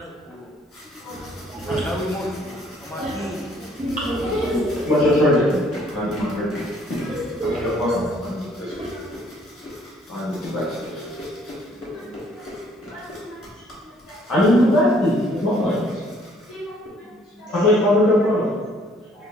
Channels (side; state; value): both; normal; correlation 0.62